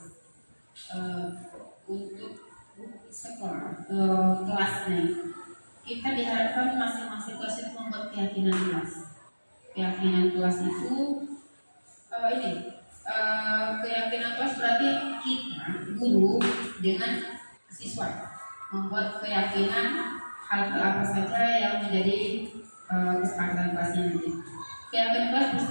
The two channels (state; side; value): inverted; both; correlation -1.00